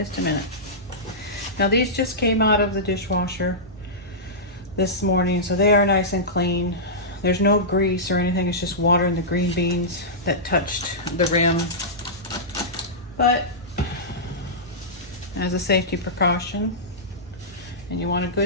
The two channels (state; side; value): normal; both; correlation -0.15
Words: a minute. Now these just came out of the dishwasher this morning, so they are nice and clean. There's no grease or anything, it's just water and the green beans that touched the rim. But as a safety precaution, and you want a